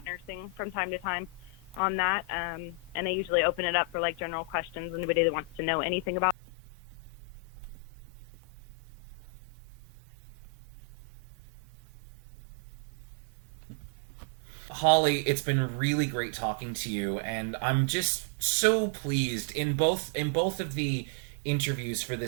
nursing from time to time on that. And I usually open it up for, like, general questions. Anybody that wants to know anything about nursing or anything about resin business, I'm here to help. And I'm sure if they had Arthur questions, I would answer those as well. Holly, it's been really great talking to you, and I'm just so pleased in both of the interviews for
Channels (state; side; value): drops out; left; at 6.4 s